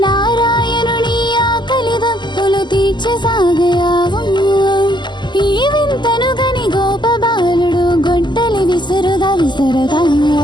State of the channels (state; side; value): late; right; 0.21 ms